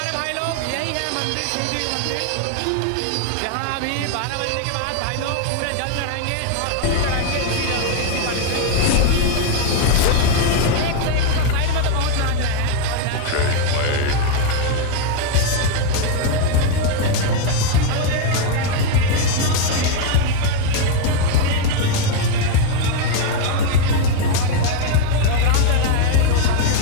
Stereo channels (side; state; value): both; different; correlation 0.01